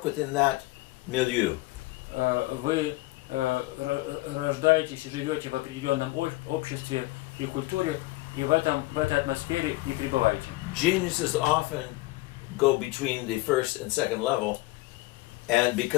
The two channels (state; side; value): quieter; right; 20.3 dB